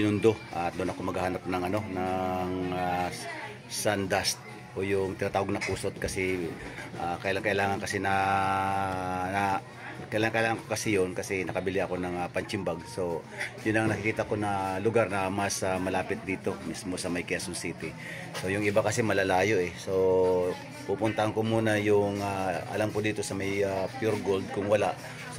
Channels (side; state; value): both; identical; correlation 1.00